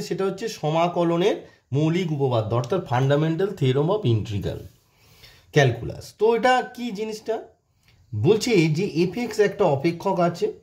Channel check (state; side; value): identical; both; correlation 1.00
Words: সেটা হচ্ছে সমাকলনের মৌলিক উপপাদ্য অর্থাৎ fundamental theorem of integral calculus. তো এটা কি জিনিসটা বলছে যে এফএক্স একটা অপেক্ষক আছে,